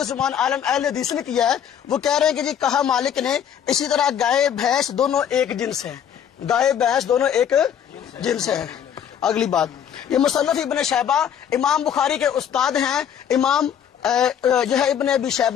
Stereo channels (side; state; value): right; quieter; 9.0 dB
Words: عالم اہل حدیث نے کیا ہے، وہ کہہ رہے ہیں کہ جی کہا مالک نے اسی طرح گائے بھینس دونوں ایک جنس ہیں، گائے بھینس دونوں ایک جنس ہیں۔ اگلی بات، یہ مصنف ابن شیبہ امام بخاری کے استاد ہیں، امام جو ہے ابن ابی